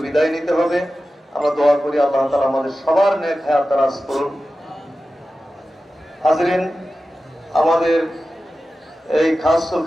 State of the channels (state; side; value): normal; both; correlation 0.94